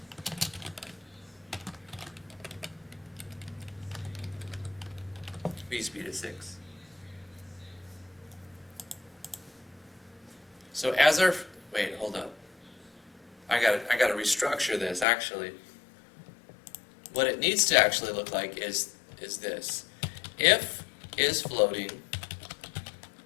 v speed is 6. So as our, wait, hold up. I gotta restructure this actually. What it needs to actually look like is this. If is floating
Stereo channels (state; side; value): drops out; right; at 15.1 s